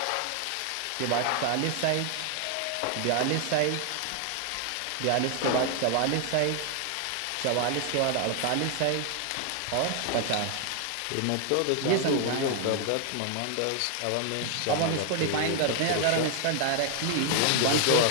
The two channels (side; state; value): both; different; correlation 0.00